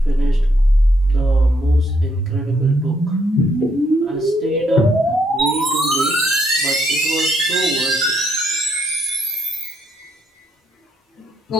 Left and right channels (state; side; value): normal; both; correlation 0.73